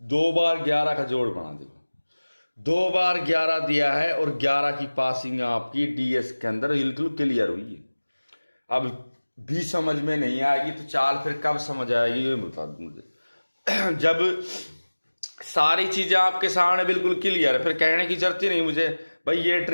बार 11 का जोड़ बना, देखो 2 बार 11 दिया है और 11 की पासिंग आपकी डीएस के अंदर बिल्कुल क्लियर हुई है। अब भी समझ में नहीं आएगी तो चाल फिर कब समझ आएगी ये बता दो मुझे। जब सारी चीजें आपके सामने बिल्कुल क्लियर है, फिर कहने की जरूरत ही नहीं मुझे भाई ये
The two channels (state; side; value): inverted; both; correlation -1.00